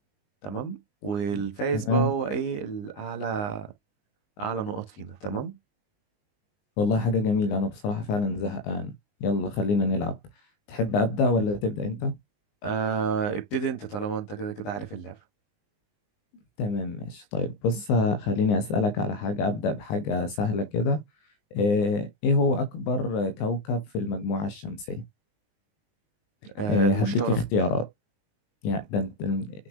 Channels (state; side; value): late; right; 19 ms